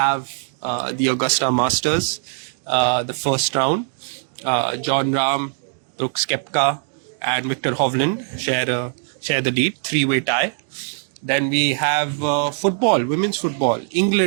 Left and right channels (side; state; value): left; silent; 64 dB below the other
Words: the Augusta Masters, the first round. John Rahm, Brooks Koepka, and Victor Hovland share the lead, three-way tie. Then we have football, women's football.